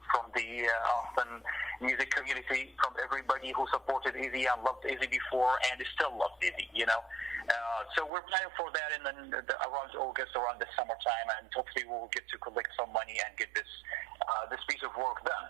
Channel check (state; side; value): drops out; left; at 8.1 s